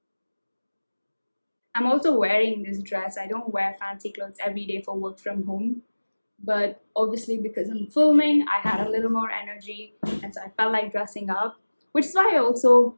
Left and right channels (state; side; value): inverted; both; correlation -1.00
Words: I'm also wearing this dress. I don't wear fancy clothes every day for work from home, but obviously because I'm filming, I had a little more energy, and so I felt like dressing up, which is why I also